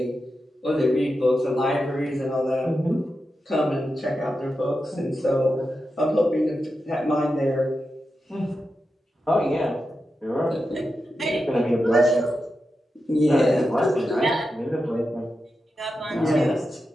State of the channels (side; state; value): both; normal; correlation 0.89